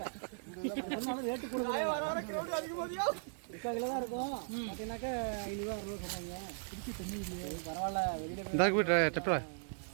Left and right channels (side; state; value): left; silent; digital silence